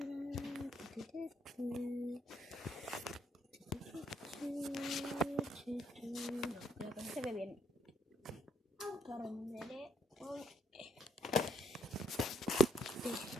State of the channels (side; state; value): both; normal; correlation 0.72